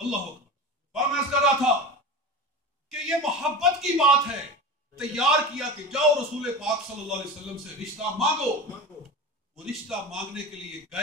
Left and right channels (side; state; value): both; normal; correlation 0.29